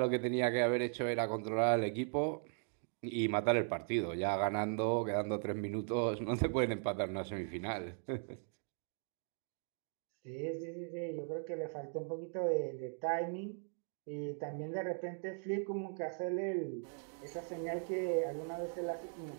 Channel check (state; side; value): silent; left; 52 dB below the other